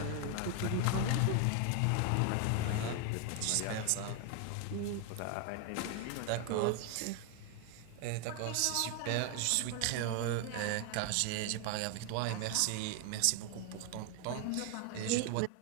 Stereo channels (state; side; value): different; both; correlation 0.01